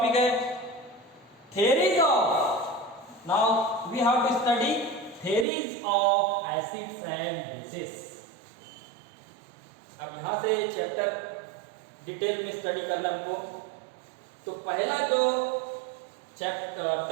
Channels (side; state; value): left; drops out; at 5.5 s